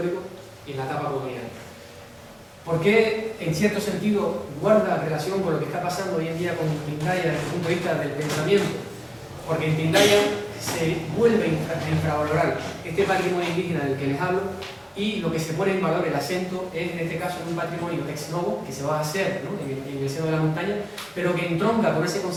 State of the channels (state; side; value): identical; both; correlation 1.00